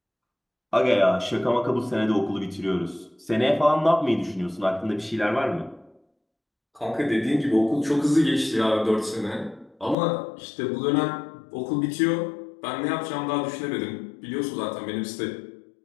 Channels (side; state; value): right; drops out; at 10.0 s